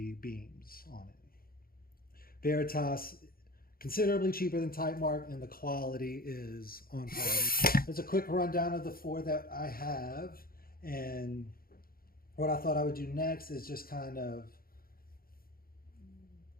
beams on it. Veritas, considerably cheaper than Tite Mark, and the quality is on par. There's a quick rundown of the 4 that I have, and what I thought I would do next is just kind of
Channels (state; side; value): late; right; 0.43 ms